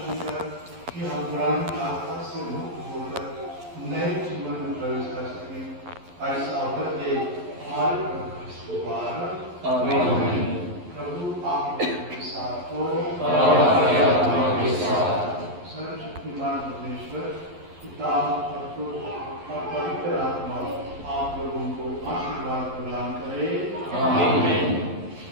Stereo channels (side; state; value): left; late; 11 ms